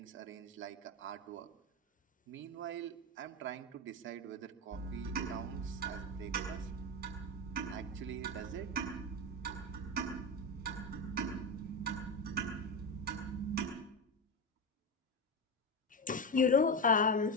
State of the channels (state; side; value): normal; both; correlation 0.15